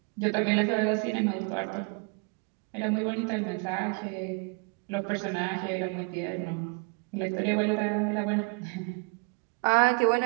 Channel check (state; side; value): quieter; left; 32.9 dB